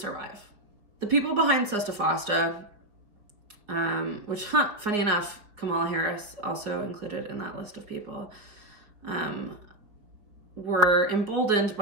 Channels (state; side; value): late; left; 4.7 ms